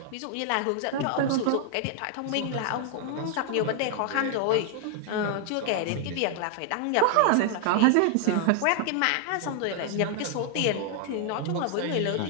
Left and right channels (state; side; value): different; both; correlation 0.00